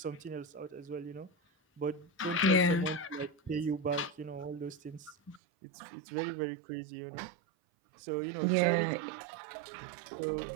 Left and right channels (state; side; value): drops out; left; at 5.4 s